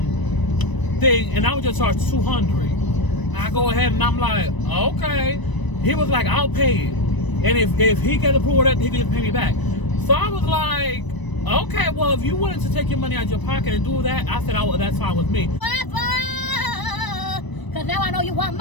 thing, and I would just charge $200. I go ahead and I'm like, okay. He was like, I'll pay it, and if he gets approval, that he can just pay me back. So I was like, okay, well, if you wanted to take your money out of your pocket and do that, I said, that's fine with me. Because now I know you want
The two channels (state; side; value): late; right; 1.0 ms